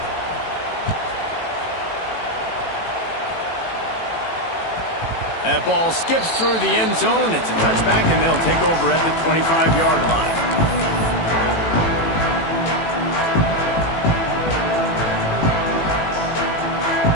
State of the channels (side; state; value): right; late; 18 ms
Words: That ball skips through the end zone. It's a touchback, and they'll take over at the 25-yard line.